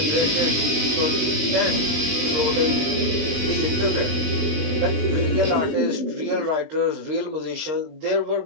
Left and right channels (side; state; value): left; late; 20 ms